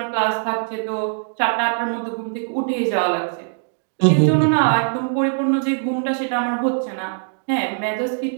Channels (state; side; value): silent; left; digital silence